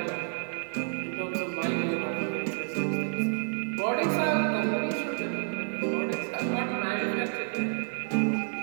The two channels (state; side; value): silent; left; digital silence